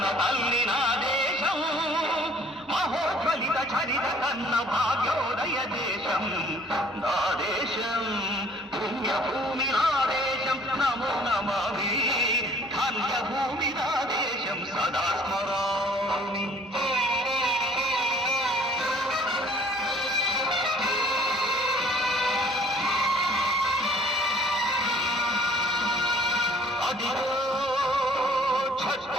తల్లి నా దేశం. మహోజ్వలిత చరిత కన్న భాగ్యోదయ దేశం నా దేశం. పుణ్యభూమి నా దేశం నమో నమామి. ధన్యభూమి నా దేశం సదా స్మరామి. అదిగో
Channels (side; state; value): both; normal; correlation 0.55